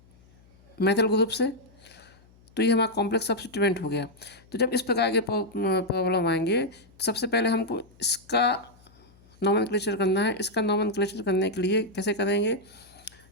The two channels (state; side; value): noise; left; hum, 28 dB below the sound